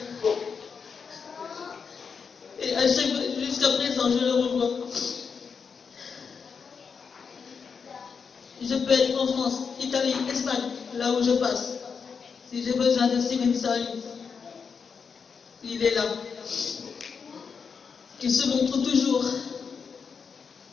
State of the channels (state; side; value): quieter; right; 5.9 dB